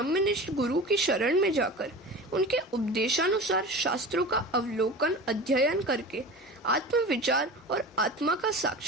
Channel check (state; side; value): normal; both; correlation 0.34